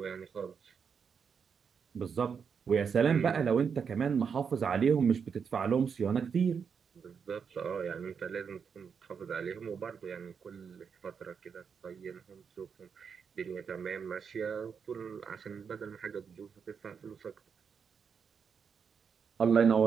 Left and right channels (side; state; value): left; quieter; 6.5 dB